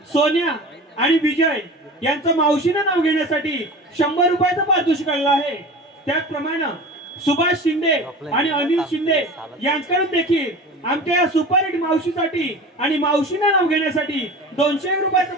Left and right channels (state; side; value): normal; both; correlation 0.35